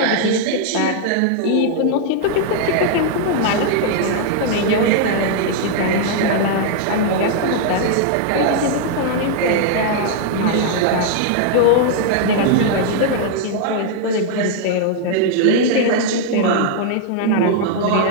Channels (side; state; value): both; different; correlation -0.01